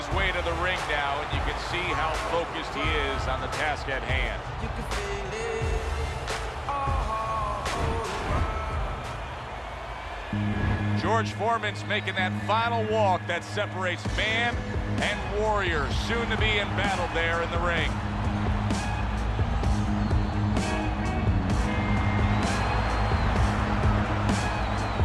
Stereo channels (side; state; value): both; identical; correlation 1.00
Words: way to the ring now, and you can see how focused he is on the task at hand. You can feel it. George Foreman's making that final walk that separates man and warrior, soon to be in battle there in the ring.